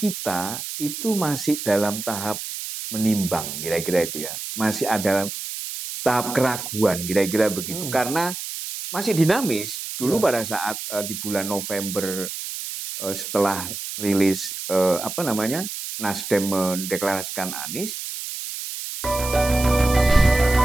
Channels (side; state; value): right; noise; hiss, 7 dB below the sound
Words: itu masih dalam tahap menimbang, kira-kira itu ya. Masih ada tahap keraguan, kira-kira begitu. Karena masih dinamis. Dulu pada saat di bulan November setelah rilis Nasdem mendeklarasikan Anies.